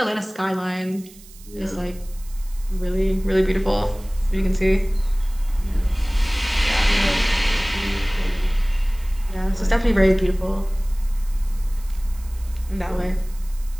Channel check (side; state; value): right; noise; hiss, 22 dB below the sound